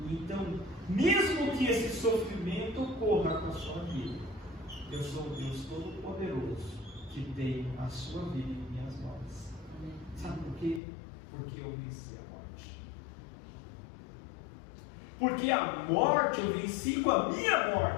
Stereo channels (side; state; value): right; drops out; at 10.8 s